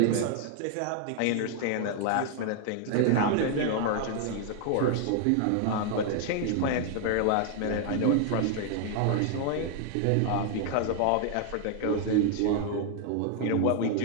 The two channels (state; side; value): different; both; correlation 0.00